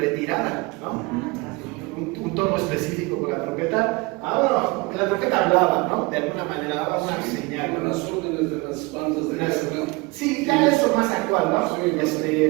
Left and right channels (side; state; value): left; quieter; 25.3 dB